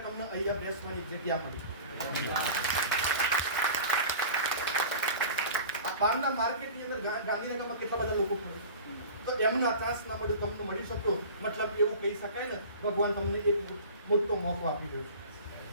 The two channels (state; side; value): inverted; both; correlation -0.39